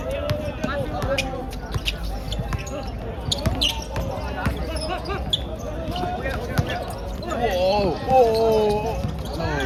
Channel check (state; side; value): identical; both; correlation 1.00